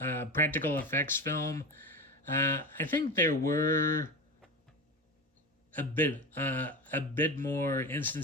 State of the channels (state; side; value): normal; both; correlation 0.24